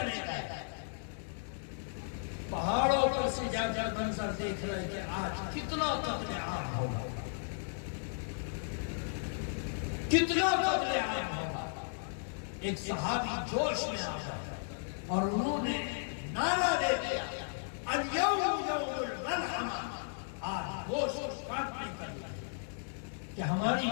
گئے۔ پہاڑوں پر سے جا جا منظر دیکھ رہے کہ آج کتنا قتل عام ہوگا، کتنا قتل عام ہوگا۔ ایک صحابی جوش میں آ گیا اور انہوں نے نعرہ دے دیا، الیوم یوم الملحمہ، آج گوشت کاٹنے کا دن ہے کہ ہماری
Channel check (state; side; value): silent; right; digital silence